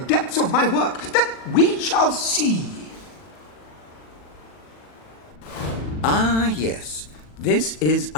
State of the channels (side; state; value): right; late; 40 ms